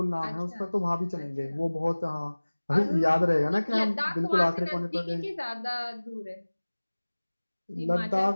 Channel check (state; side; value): inverted; both; correlation -1.00